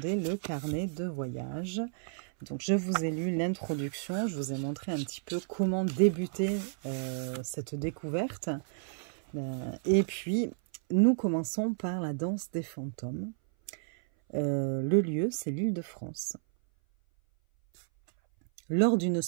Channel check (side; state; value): left; silent; 57 dB below the other